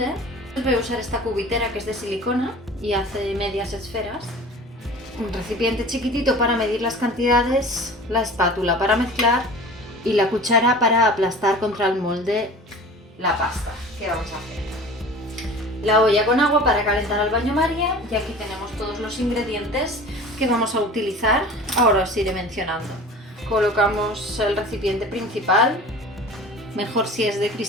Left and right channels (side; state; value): both; normal; correlation 0.40